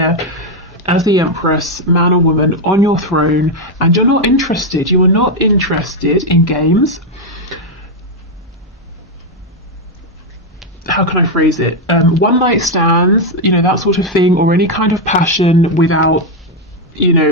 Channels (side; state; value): both; normal; correlation 0.03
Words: as the Empress, man or woman, on your throne, and you're not interested. You are not interested in games. How can I phrase it? One night stands, you know, that sort of thing, or any kind of passion without, you